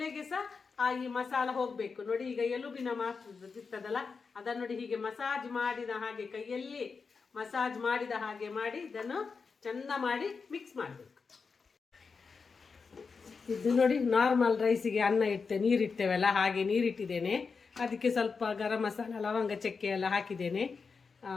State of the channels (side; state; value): right; quieter; 5.0 dB